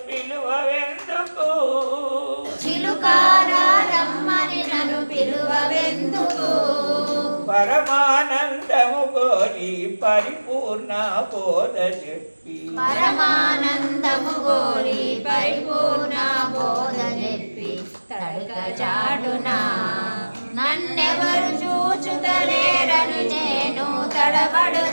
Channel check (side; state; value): both; inverted; correlation -1.00